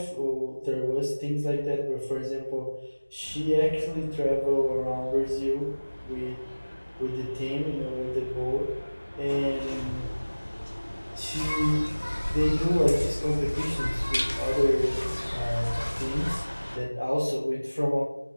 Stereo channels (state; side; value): inverted; both; correlation -1.00